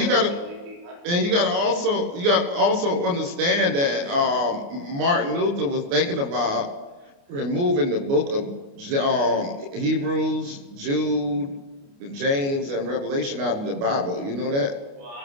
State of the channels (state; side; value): late; left; 29 ms